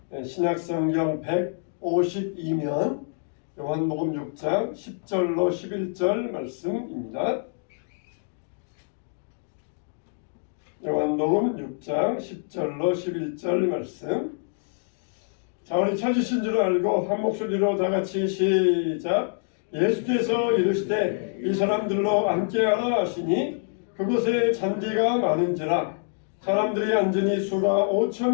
신약성경 152면 요한복음 6장 10절로 11절 말씀입니다. 요한복음 6장 10절로 11절 말씀. 자, 우리 찾으신 줄 알고 한 목소리로 다 같이 시작. 예수께서 이르시되 이 사람들로 앉게하라 하시니 그곳에 잔디가 많은지라 사람들이 앉으니 수가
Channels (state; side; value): silent; right; digital silence